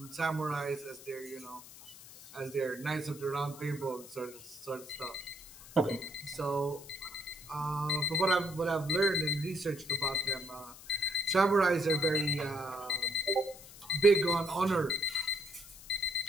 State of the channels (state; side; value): noise; left; hiss, 17 dB below the sound